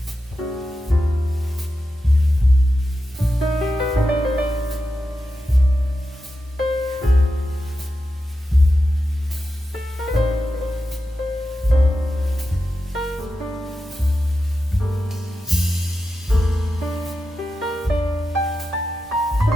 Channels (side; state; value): both; normal; correlation 0.90